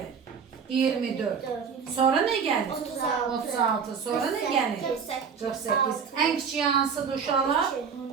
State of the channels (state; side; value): quieter; left; 6.4 dB